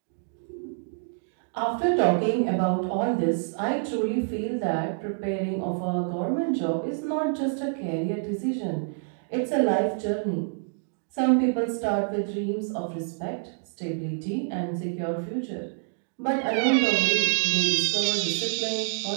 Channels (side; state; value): left; silent; digital silence